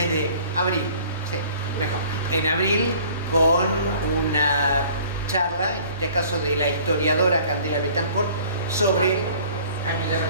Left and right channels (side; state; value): both; inverted; correlation -0.51